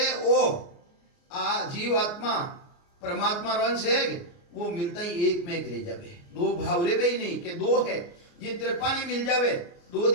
ओ आ जीव आत्मा परमात्मा अंश है वो मिलता ही एक में एक रह जावे दो भाव रे भी नहीं के दो है जिन तरह पानी मिल जावे दो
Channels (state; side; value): late; right; 29 ms